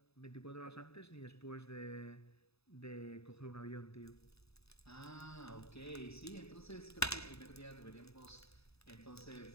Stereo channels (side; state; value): right; late; 0.78 ms